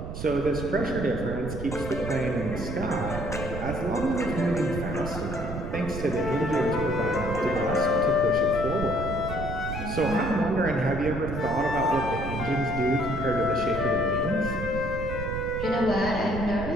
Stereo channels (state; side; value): noise; right; rumble, 6 dB below the sound